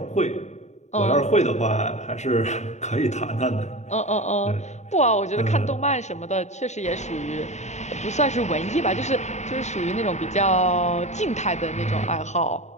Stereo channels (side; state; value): right; late; 0.33 ms